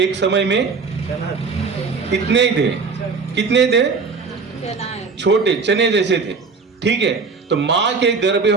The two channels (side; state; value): left; quieter; 4.7 dB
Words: समय में इतने ही थे, कितने थे, छोटे चने जैसे थे, ठीक है। तो माँ के गर्भ में